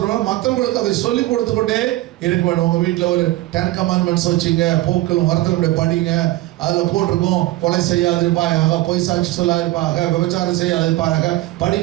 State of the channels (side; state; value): left; quieter; 17.6 dB